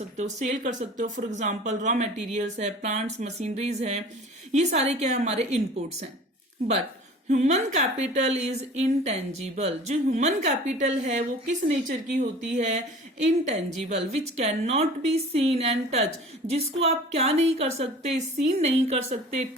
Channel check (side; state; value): both; normal; correlation 0.43